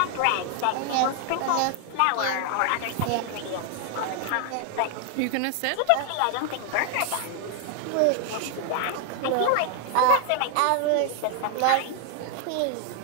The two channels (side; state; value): both; different; correlation 0.00